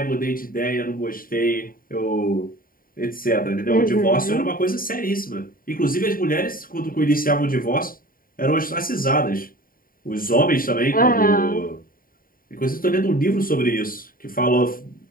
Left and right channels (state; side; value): late; right; 0.41 ms